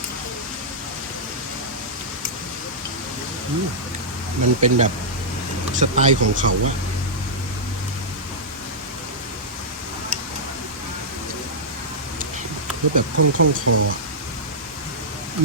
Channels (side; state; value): both; normal; correlation -0.11